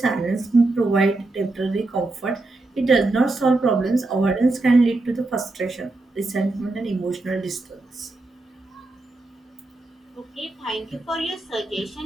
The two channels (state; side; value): quieter; left; 3.0 dB